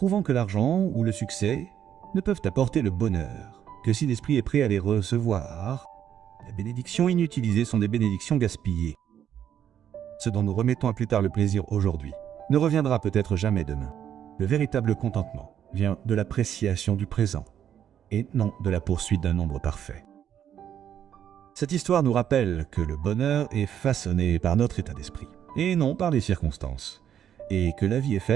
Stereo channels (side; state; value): left; quieter; 9.7 dB